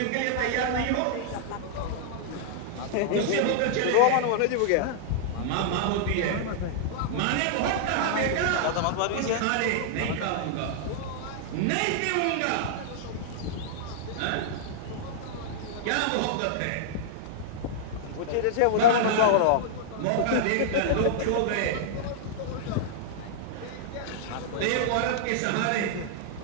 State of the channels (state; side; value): different; both; correlation -0.01